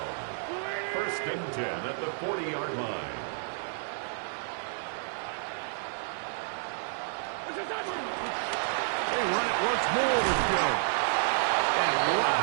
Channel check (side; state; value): left; silent; 58 dB below the other